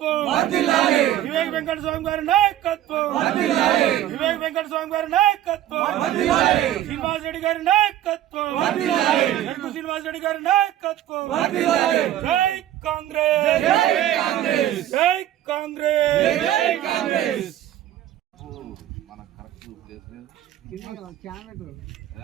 వివేక్ వెంకట స్వామి గారి నాయకత్వం, వివేక్ వెంకట స్వామి గారి నాయకత్వం, శ్రీనివాస్ రెడ్డి గారి నాయకత్వం, శ్రీనివాస్ రెడ్డి గారి నాయకత్వం. జై కాంగ్రెస్, జై కాంగ్రెస్, జై కాంగ్రెస్, జై కాంగ్రెస్.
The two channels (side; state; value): left; quieter; 12.6 dB